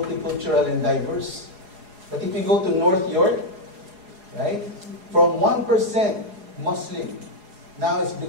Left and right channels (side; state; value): left; late; 4.8 ms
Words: and diverse. But if you go to North York, right, from 1% Muslim, now it's